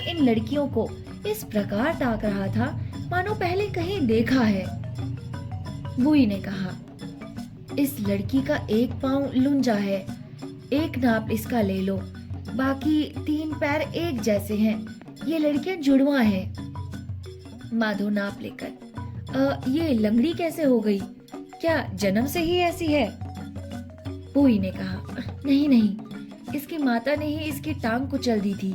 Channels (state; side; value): identical; both; correlation 1.00